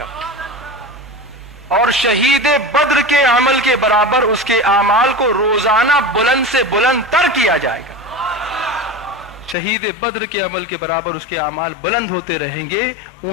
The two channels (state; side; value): drops out; right; at 9.6 s